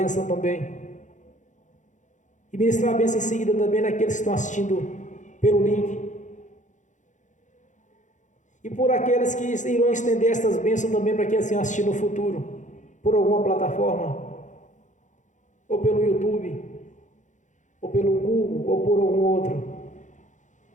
também. E ministrar a bênção em seguida também naqueles que estão assistindo pelo link. E por aqueles que irão estender estas bênçãos também para quem assim assistir no futuro, por alguma plataforma, ou pelo YouTube, ou pelo Google, ou por algum outro.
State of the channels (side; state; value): right; late; 0.36 ms